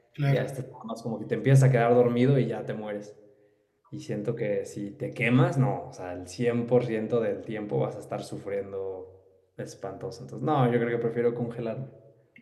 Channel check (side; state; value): both; identical; correlation 1.00